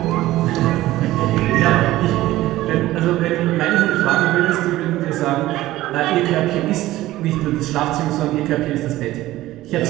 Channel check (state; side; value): quieter; left; 16.2 dB